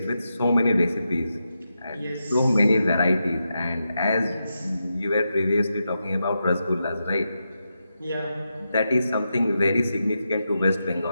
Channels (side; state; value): both; inverted; correlation -0.87